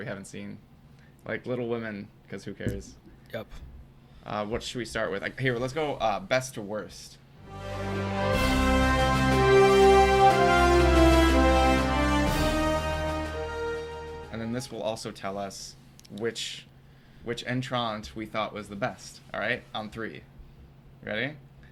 haven't seen, like Little Women, because who cares? Yep. What should we start with? Like, here, let's go best to worst. And then this will also tell us which entrant we thought was the best. All right, on three. Ready?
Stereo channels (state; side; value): identical; both; correlation 1.00